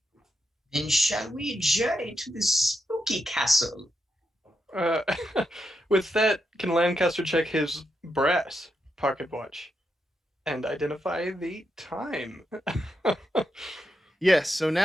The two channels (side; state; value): both; normal; correlation 0.83